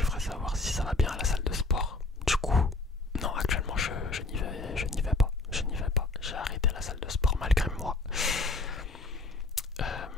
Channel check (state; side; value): quieter; right; 3.2 dB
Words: ferais savoir si ça va bien à la salle de sport. Du coup, non, actuellement je n'y vais pas. J'ai arrêté la salle de sport malgré moi.